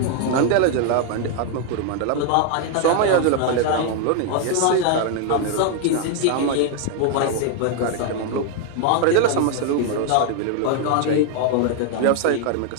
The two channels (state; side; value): different; both; correlation 0.00